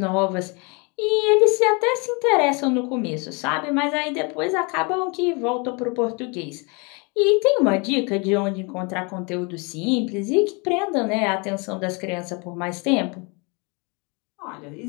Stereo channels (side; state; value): right; quieter; 30.9 dB